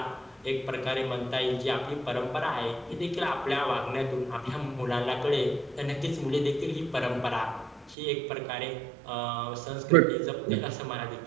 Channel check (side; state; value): left; drops out; at 8.0 s